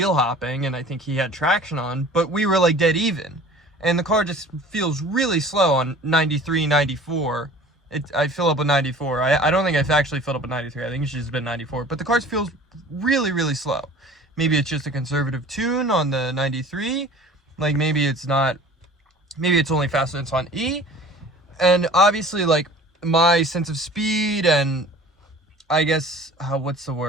hopping, and I think he had traction on, but we were like dead even, and the car just feels really slow on 93, 94. I fill up with 94. I don't think I've actually filled up with 93. I think it's just been 94. But the car feels really, really slow. Maybe it's just a conservative tune on the 93. Like, maybe it's not. Maybe it's only faster than it's on E. And obviously, like, my sense of speed and I guess, what's the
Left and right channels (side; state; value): both; normal; correlation 0.45